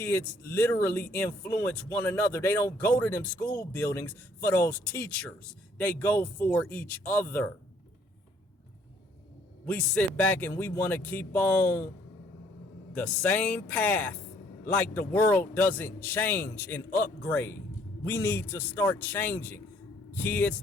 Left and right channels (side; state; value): both; normal; correlation 0.63